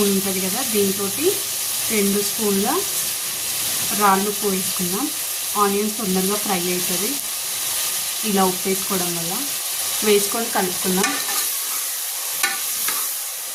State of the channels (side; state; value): both; identical; correlation 1.00